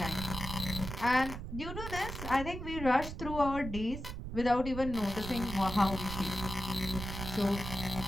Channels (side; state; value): right; noise; rumble, 7 dB below the sound